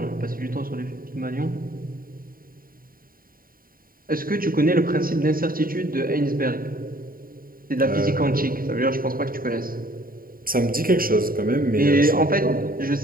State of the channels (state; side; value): late; left; 0.42 ms